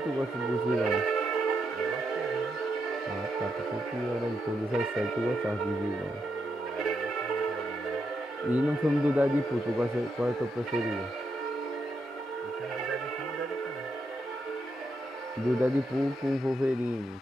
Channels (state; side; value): normal; both; correlation 0.82